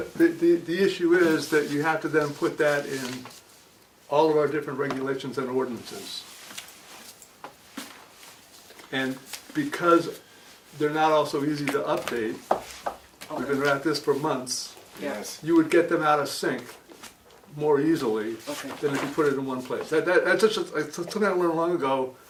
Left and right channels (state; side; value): identical; both; correlation 1.00